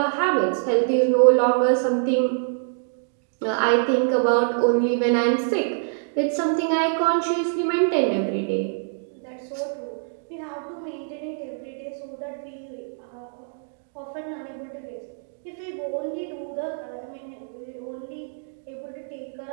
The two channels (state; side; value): silent; left; digital silence